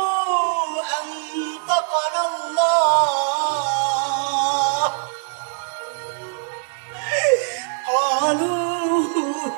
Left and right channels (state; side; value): silent; left; digital silence